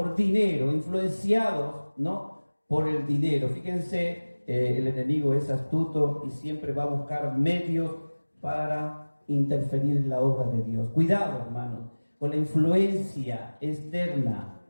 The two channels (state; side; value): inverted; both; correlation -1.00